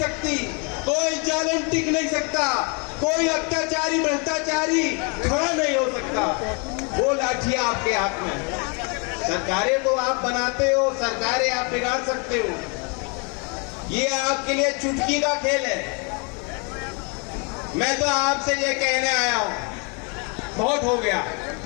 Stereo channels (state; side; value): quieter; right; 34.3 dB